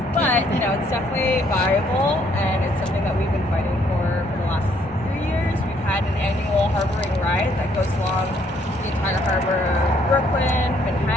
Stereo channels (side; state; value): both; normal; correlation 0.67